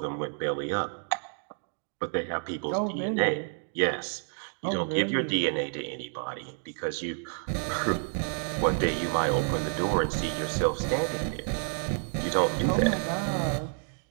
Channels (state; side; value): silent; left; 58 dB below the other